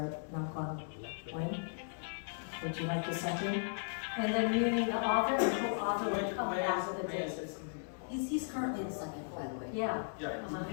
Nam Quang Nguyen, would you like to second? And then meaning the author and co-author will come back with a May I date. say something? He's currently the second, by the way. Yeah. Yeah, Uh-huh.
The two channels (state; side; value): silent; right; digital silence